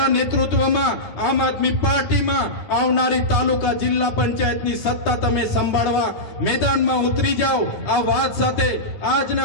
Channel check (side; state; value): right; late; 10 ms